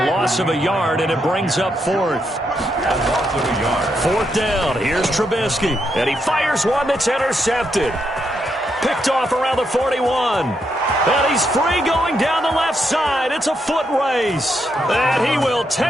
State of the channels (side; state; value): both; normal; correlation 0.80